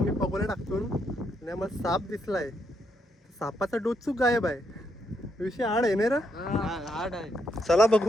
पगोल्या टाकतो आणि आम्हाला साप दिसलाय. सापाचा डोचूक गायब आहे. विषय आड आहे नाही रा. हाड आहे. चला बघू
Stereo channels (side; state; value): both; normal; correlation 0.77